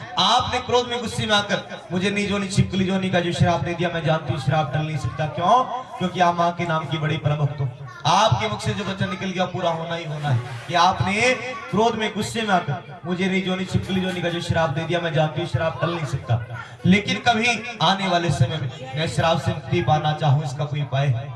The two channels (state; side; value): identical; both; correlation 1.00